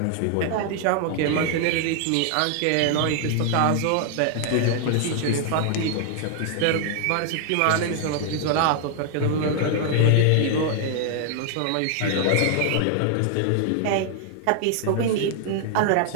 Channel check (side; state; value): both; different; correlation 0.00